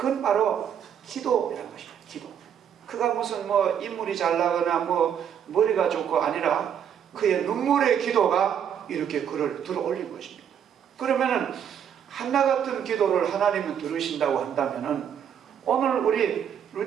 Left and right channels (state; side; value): quieter; left; 8.6 dB